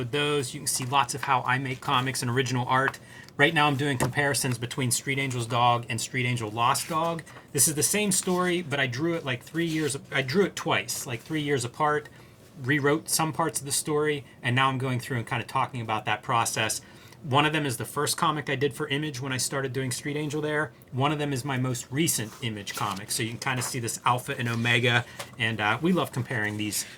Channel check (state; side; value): identical; both; correlation 1.00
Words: those. You can see lots of how I make comics and original art. Right now I'm doing comparisons between Street Angel's Dog and Street Angel Lost Dog. This is the same story, but I drew it like 3 years. I drew it twice, like 3 years apart, rewrote some parts of the story, and now I'm going through and kind of talking about that process. One of them is the first comic I did for Image when I started doing Street Angel there. One of them is my most recent Image comic. So you can kind of see this alpha and omega. And we love comparing these